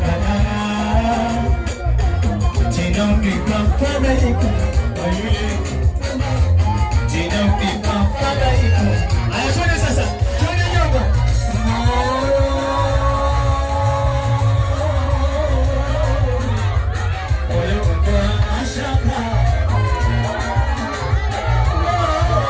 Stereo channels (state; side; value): identical; both; correlation 1.00